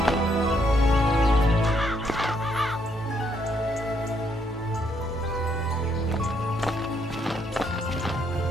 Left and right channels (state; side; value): normal; both; correlation 0.73